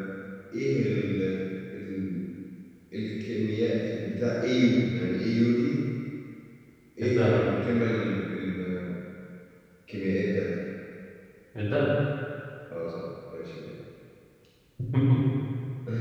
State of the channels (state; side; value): identical; both; correlation 1.00